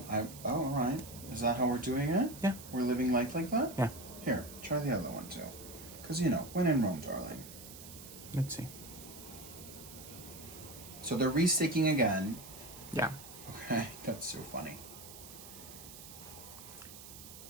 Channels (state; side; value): noise; right; hiss, 15 dB below the sound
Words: all right. Is that how we're doing it? Yeah. We're living life like that? Yeah. Here, try the other one too. Because, you know, when in Rome, darling. Let's see. So they're re-sticking again. Yeah. Okay, that's so funny.